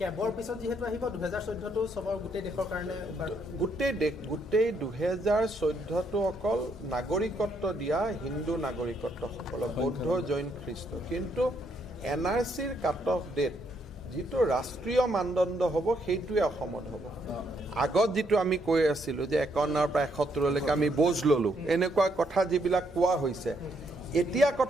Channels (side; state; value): both; normal; correlation 0.73